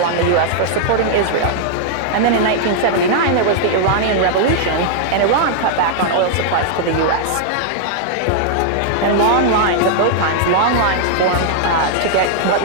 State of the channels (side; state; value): both; different; correlation -0.01